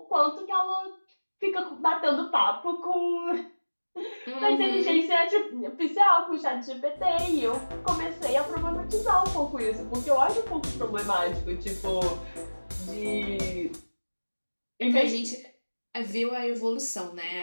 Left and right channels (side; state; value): both; inverted; correlation -1.00